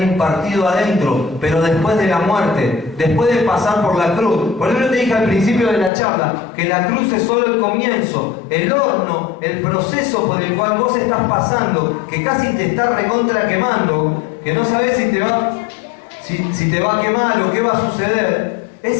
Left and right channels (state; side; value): drops out; right; at 5.9 s